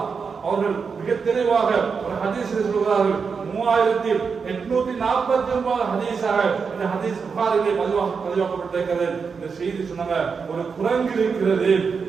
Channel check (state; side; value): quieter; left; 5.5 dB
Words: அவர்கள் மிக தெளிவாக ஒரு ஹதீஸில் சொல்கிறார்கள். 3849 ஹதீஸாக இந்த ஹதீஸ் புகாரிலே பதிவாக்கப்பட்டிருக்கிறது. இந்த செய்தி சொன்னாங்க, ஒரு குரங்கு இருக்கிறது.